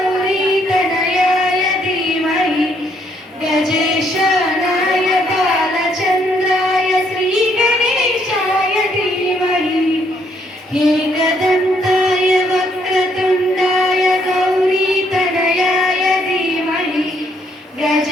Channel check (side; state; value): both; normal; correlation 0.70